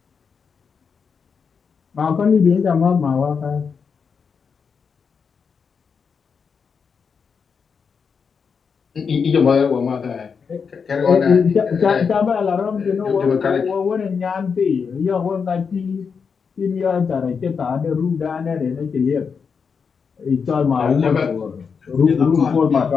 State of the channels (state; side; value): quieter; right; 5.9 dB